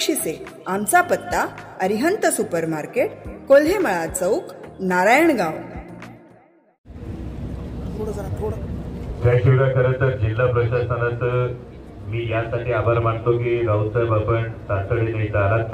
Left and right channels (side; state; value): both; identical; correlation 1.00